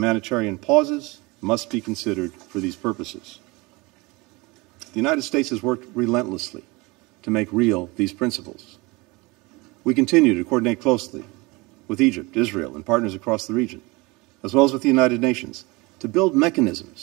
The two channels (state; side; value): quieter; left; 24.7 dB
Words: pauses must be considered for these purposes. The United States has worked relentlessly to make real these principles. We continue to coordinate closely with Egypt, Israel, and partners across the region, as well as with the United Nations, to build